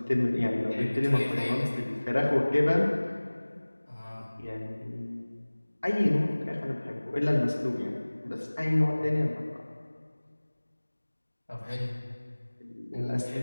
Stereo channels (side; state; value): both; inverted; correlation -1.00